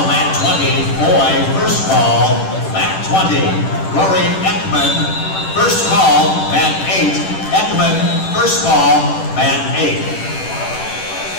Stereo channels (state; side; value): late; right; 10 ms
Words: mat 20. Foy, first ball, mat 20. Rory Ekman, first call, mat 8. Ekman, first ball, mat 8.